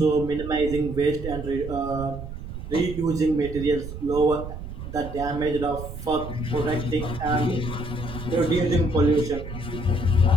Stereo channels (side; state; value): right; noise; rumble, 9 dB below the sound